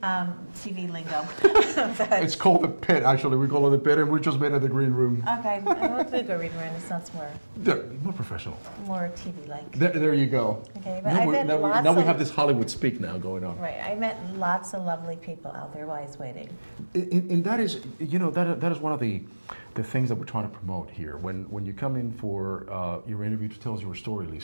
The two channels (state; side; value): inverted; both; correlation -1.00